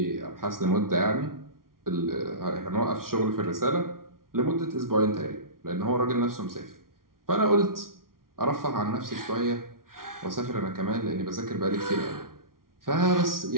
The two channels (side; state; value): left; late; 0.92 ms